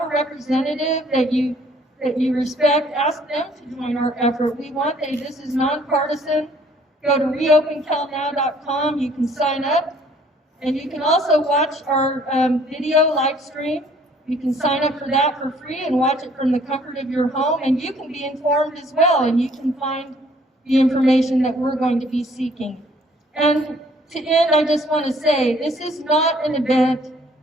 a representative that you respect, ask them to join our effort. This is nonpartisan. Go to reopencalnow.com. You can sign up, and you can also watch our video live stream. You can sign up for that for free and watch it from the comfort of your home, and you can be informed as well, and you can find the information that we're going to be seeking. And to end, I just want to say, this is not an event.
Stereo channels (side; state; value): both; normal; correlation 0.60